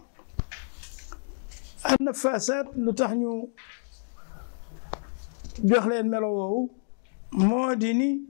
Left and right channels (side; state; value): right; silent; digital silence